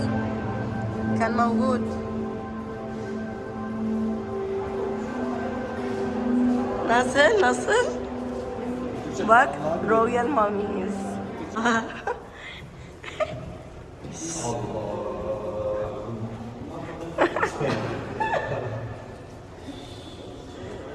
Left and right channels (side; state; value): both; identical; correlation 1.00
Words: كان موجود nasıl bak Royal Mummies.